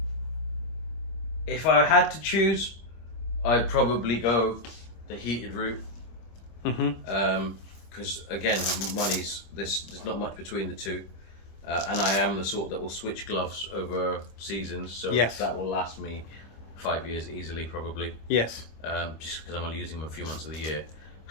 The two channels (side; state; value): right; late; 25 ms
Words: if I had to choose, I'd probably go the heated route. Mm-hmm. Because again, there's not much between the two, and I am the sort that will switch gloves over seasons, so Yes. that will last me 5 years easily, probably. Yes. Just because I'm only using them a few months of the year.